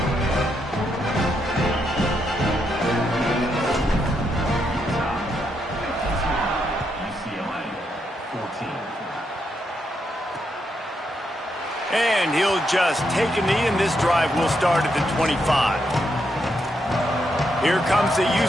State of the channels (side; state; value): both; normal; correlation 0.80